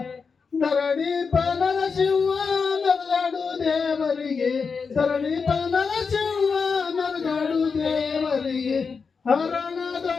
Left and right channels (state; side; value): quieter; right; 5.3 dB